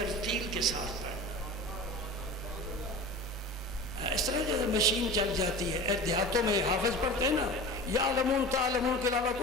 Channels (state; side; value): normal; both; correlation 0.35